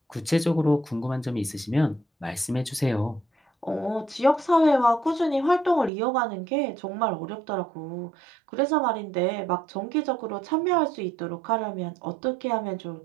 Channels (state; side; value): drops out; left; at 5.9 s